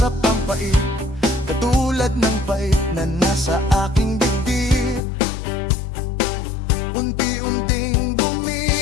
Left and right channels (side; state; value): right; drops out; at 5.0 s